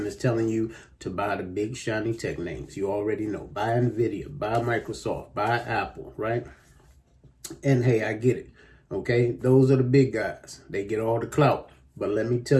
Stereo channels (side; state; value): both; identical; correlation 1.00